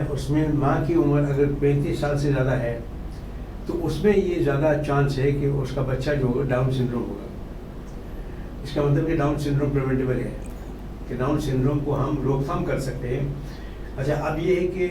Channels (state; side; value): identical; both; correlation 1.00